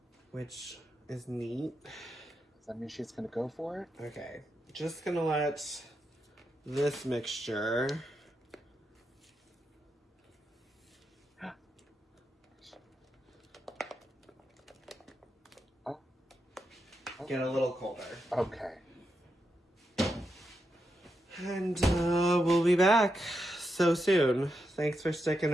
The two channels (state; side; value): normal; both; correlation 0.85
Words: Which is neat. Does that mean she's gonna go for it? Okay. Just gonna let this mixture get a little colder. Okay. And we'll be back so soon. Thanks for sticking